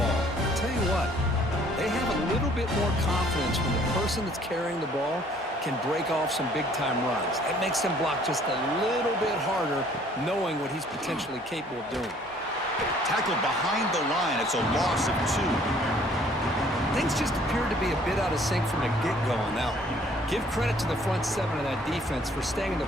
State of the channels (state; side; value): normal; both; correlation 0.58